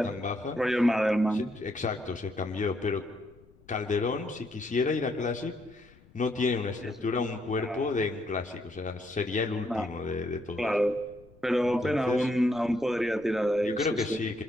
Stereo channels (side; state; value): left; noise; rumble, 26 dB below the sound